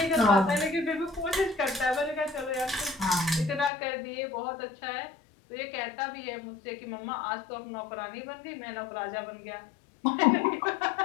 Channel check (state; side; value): drops out; right; at 3.7 s